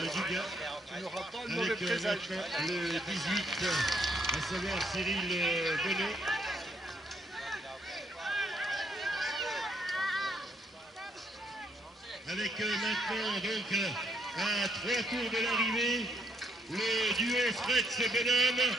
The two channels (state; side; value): normal; both; correlation 0.69